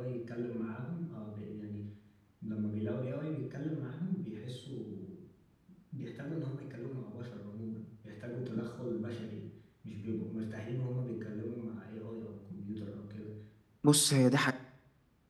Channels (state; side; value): identical; both; correlation 1.00